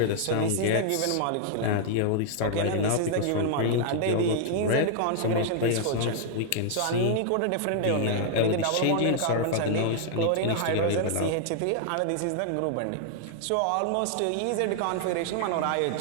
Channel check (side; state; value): both; different; correlation -0.01